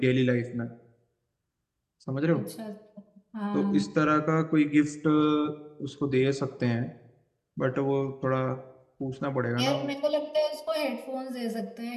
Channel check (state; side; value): identical; both; correlation 1.00